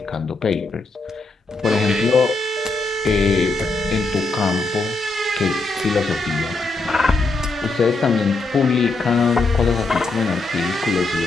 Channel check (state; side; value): quieter; right; 3.4 dB